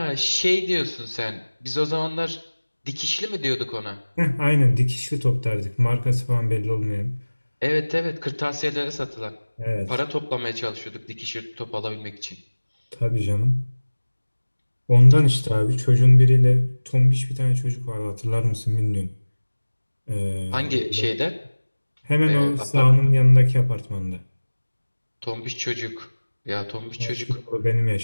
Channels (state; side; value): inverted; both; correlation -1.00